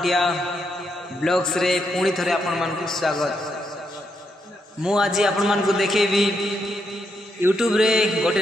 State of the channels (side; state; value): both; normal; correlation 0.80